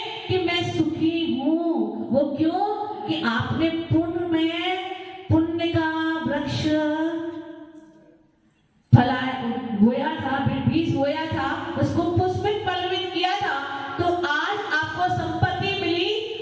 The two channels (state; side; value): identical; both; correlation 1.00